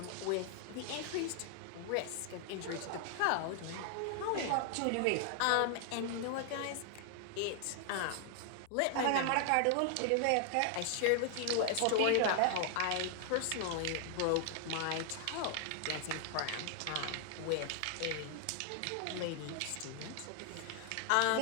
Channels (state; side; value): different; both; correlation 0.00